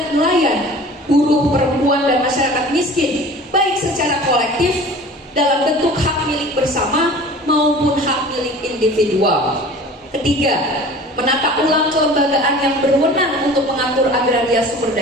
nelayan, buruh, perempuan, dan masyarakat miskin, baik secara kolektif dalam bentuk hak milik bersama maupun hak milik individual. 3. Menata ulang kelembagaan yang berwenang untuk mengatur agraria sumber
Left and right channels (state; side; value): normal; both; correlation 0.42